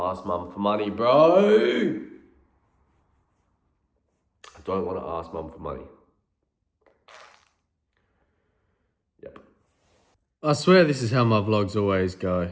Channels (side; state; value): both; identical; correlation 1.00